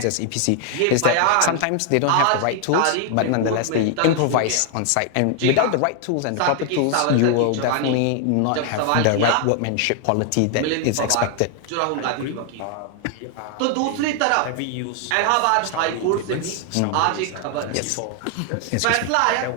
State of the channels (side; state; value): both; different; correlation 0.00